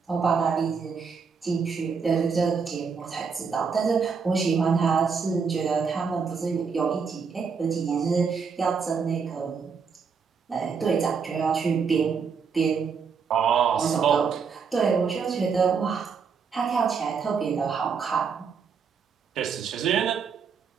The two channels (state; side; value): quieter; left; 5.9 dB